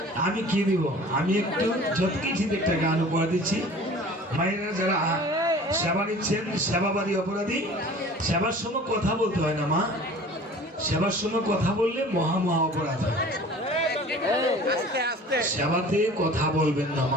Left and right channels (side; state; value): both; normal; correlation 0.44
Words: আমি কি দিব? আমি একটু যত কিছু একটা গান উপহার দিচ্ছি। মায়েরা যারা সেবা নিচ্ছেন, সেবাবাদী অপরাধী, সেবার সময় কথা বলতে হয় না মা, সেবার সময় কথা বললে মহা মহা অপরাধ হয়। সেবাতে কথা বলবেন না